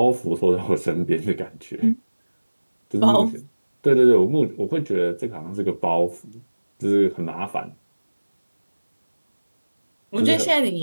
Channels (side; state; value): both; inverted; correlation -1.00